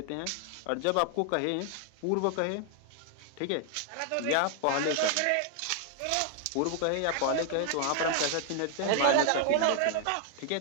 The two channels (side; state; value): both; different; correlation 0.00